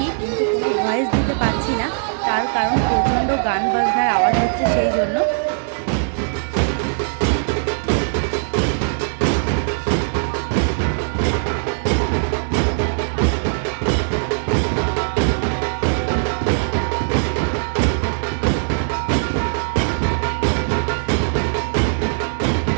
কিন্তু কোনো ভয়েস দিতে পারছি না, তার কারণ প্রচণ্ড গান বাজনার আওয়াজ হচ্ছে সেই জন্য।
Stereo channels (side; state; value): left; silent; digital silence